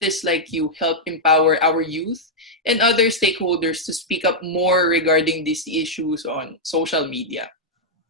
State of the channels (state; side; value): normal; both; correlation -0.05